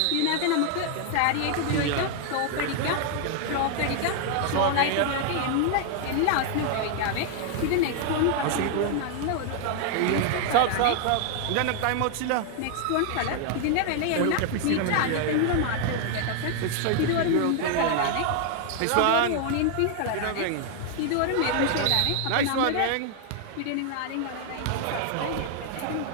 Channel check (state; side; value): different; both; correlation 0.00